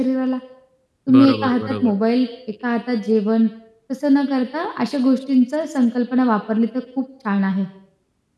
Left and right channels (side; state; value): both; identical; correlation 1.00